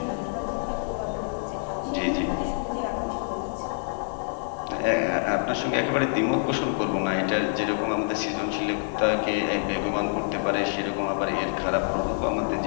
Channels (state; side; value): silent; right; 58 dB below the other